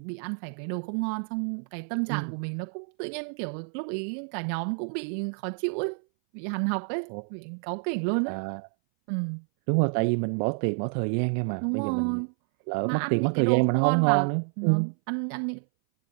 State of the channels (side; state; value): left; silent; 58 dB below the other